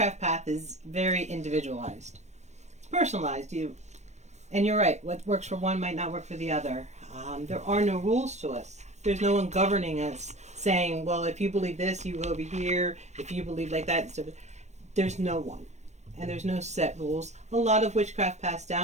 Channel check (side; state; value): left; late; 0.33 ms